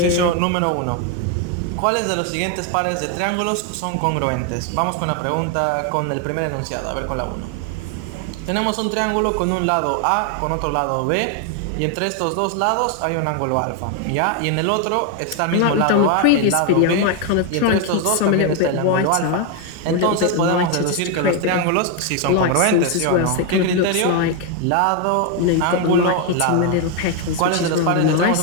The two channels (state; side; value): different; both; correlation 0.01